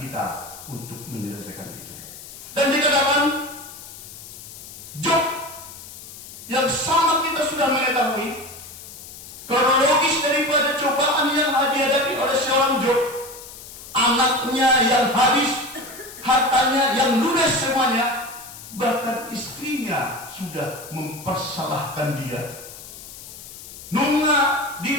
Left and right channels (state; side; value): noise; left; hiss, 15 dB below the sound